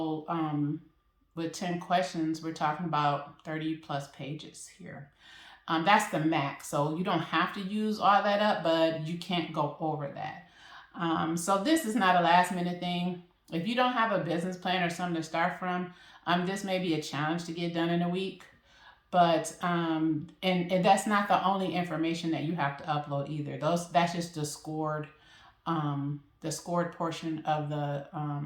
with 10 questions, we're talking about 30 plus pages here. That's the max. So you don't have to use all that up, but you can't go over that. So this is not a last minute thing. If you don't have a business plan or something to start from, this may be a challenge to get done in a week. But and that's not the only information that you have to upload either. That's just the scored portion of the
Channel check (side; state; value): both; identical; correlation 1.00